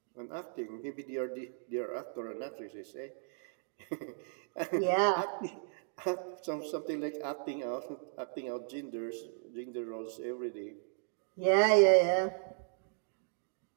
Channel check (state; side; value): silent; left; digital silence